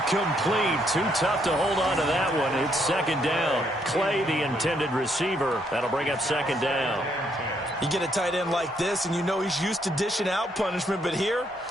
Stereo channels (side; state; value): both; normal; correlation 0.73